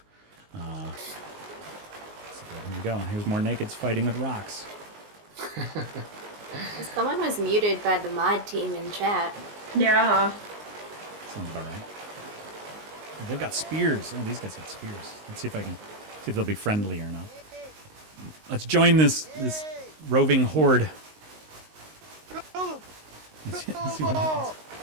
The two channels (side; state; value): left; late; 19 ms